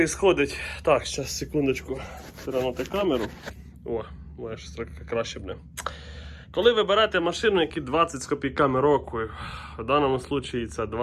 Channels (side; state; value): both; identical; correlation 1.00